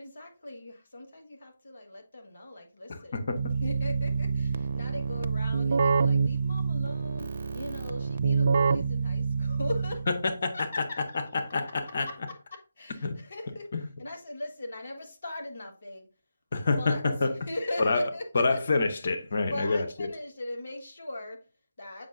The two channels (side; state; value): both; inverted; correlation -0.85